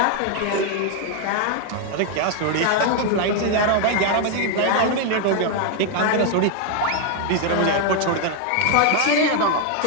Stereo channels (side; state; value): both; different; correlation 0.00